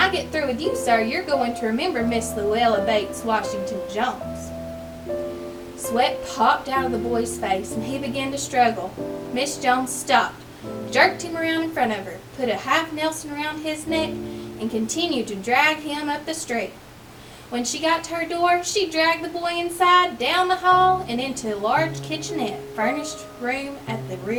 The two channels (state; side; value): identical; both; correlation 1.00